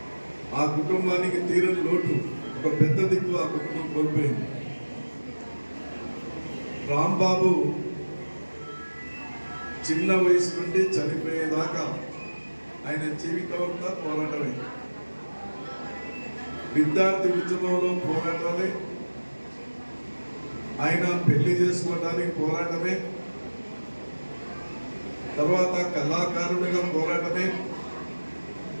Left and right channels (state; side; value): inverted; both; correlation -1.00